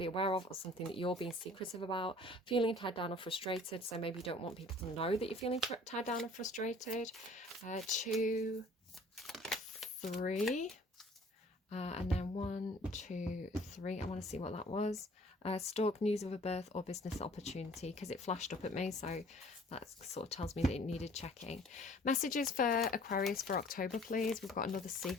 aware of or something that you're being secretive about. Feeling tied down or frustrated. So maybe you don't want people to know that you're feeling tied down or frustrated. 2, 3. And then 1, 2, 3. I want to see what that was. Stalk, news of a birth or business opportunity, because it flashed up at me, so that sort of tells me that it needed checking. Messages for Aquarius for October, please. We've got another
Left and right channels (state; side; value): normal; both; correlation 0.52